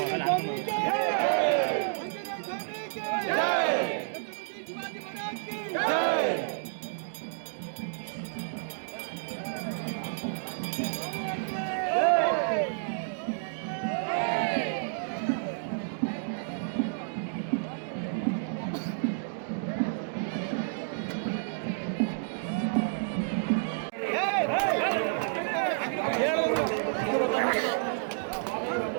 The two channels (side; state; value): left; silent; digital silence